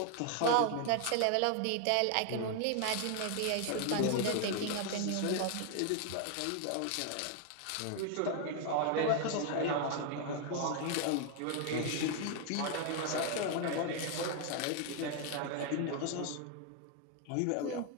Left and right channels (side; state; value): both; different; correlation 0.00